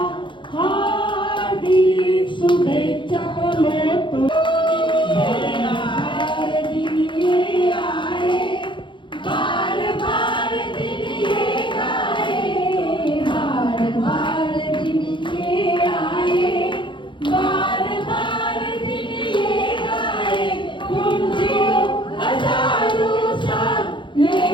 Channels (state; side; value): late; right; 0.23 ms